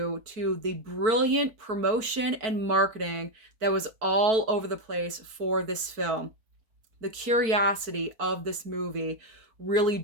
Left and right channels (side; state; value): left; late; 4.5 ms